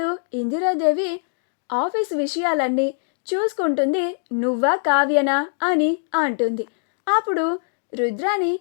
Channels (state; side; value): silent; right; digital silence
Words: ఇందిరాదేవి, ఆఫీస్ విషయాలన్నీ చూసుకుంటుంది నువ్వా కావ్యనా అని అంటుంది. అప్పుడు రుద్రాణి,